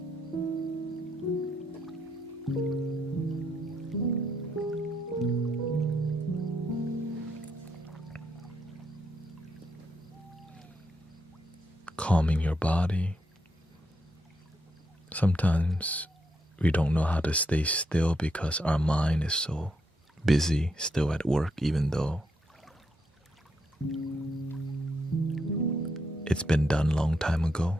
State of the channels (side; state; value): both; normal; correlation 0.79